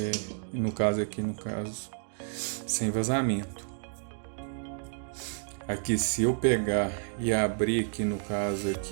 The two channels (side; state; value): left; silent; digital silence